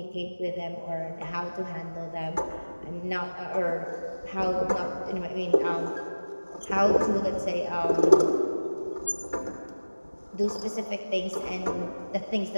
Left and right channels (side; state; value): both; inverted; correlation -1.00